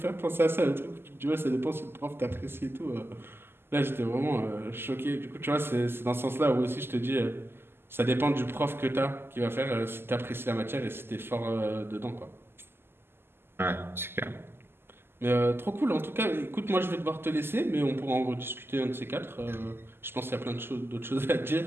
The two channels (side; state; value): left; late; 0.11 ms